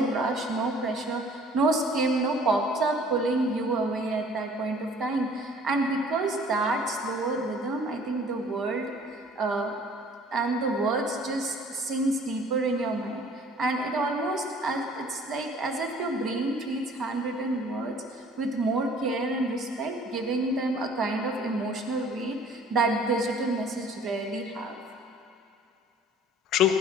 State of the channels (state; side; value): normal; both; correlation 0.52